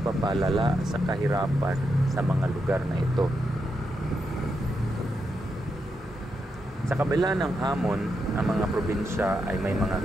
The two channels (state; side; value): normal; both; correlation 0.84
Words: sa kahirapan sa mga lugar na ito. Sa kabila ng hamon, ang mga probinsya ay may mga